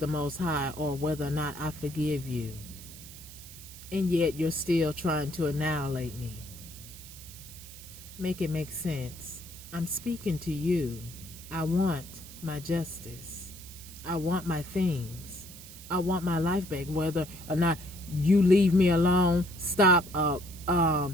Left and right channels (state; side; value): noise; right; hiss, 16 dB below the sound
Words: Most High or whether or not I forgive you. And yet you're still trying to annihilate me. Make it make sense. I'm speaking to you. I want my justice. I want my things. I want my life back. Whether or not you leave me alone, stop